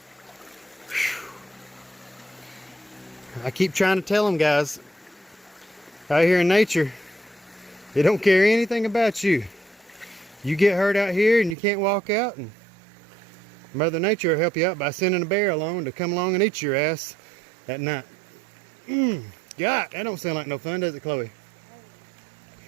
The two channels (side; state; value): left; drops out; at 11.6 s